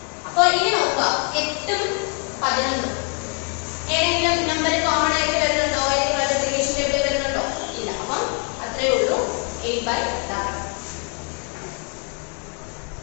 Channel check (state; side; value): quieter; right; 39.3 dB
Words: അപ്പൊ ഇനി നോക്കുക, 8ഉം 11 ഏതെങ്കിലും നമ്പർ കോമൺ ആയിട്ട് വരുന്നുണ്ടോ, ഏതെങ്കിലും മൾട്ടിപ്ലിക്കേഷൻ ടേബിളിൽ വരുന്നുണ്ടോ, ഇല്ല. അപ്പം അത്രേ ഉള്ളൂ, 8/11.